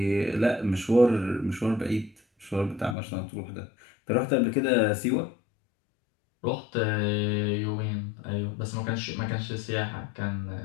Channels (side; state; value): right; drops out; at 3.0 s